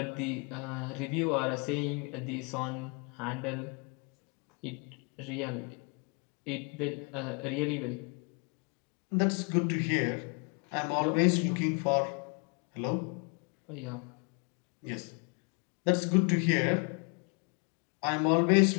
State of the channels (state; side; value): quieter; right; 34.8 dB